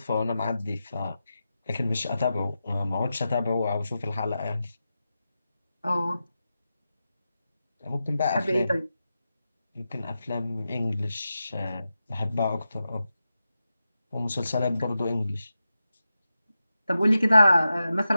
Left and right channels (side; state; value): both; inverted; correlation -0.91